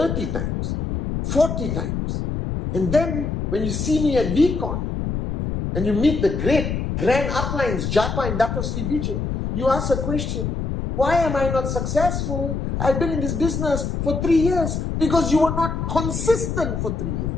times, 40 times. And then when you see me at VCon and you meet the great grand uplines, Japa and Dato Sri Vijay, you ask a question. Why am I not successful? I've been in this business for 3 years. Because you were not consistent for 3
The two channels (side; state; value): left; noise; rumble, 2 dB below the sound